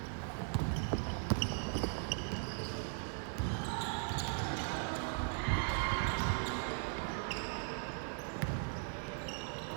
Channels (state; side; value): silent; left; 52 dB below the other